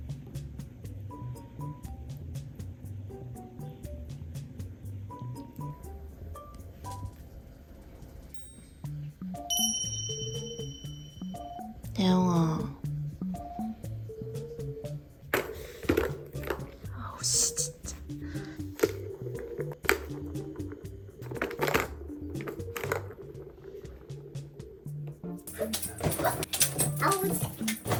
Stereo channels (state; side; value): identical; both; correlation 1.00